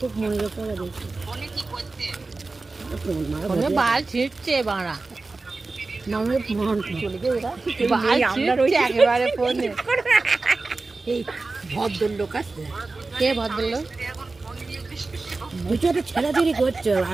মনে পড়ে দেখছি। বাল ছিটছে বাড়া, ভদ্রলোক আছে। কে ভদ্রলোক? ওইটা ছেড়াছড়ি করছে,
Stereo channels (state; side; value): quieter; left; 3.6 dB